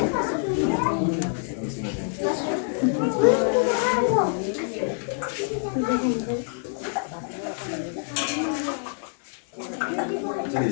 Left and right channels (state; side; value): silent; right; 57 dB below the other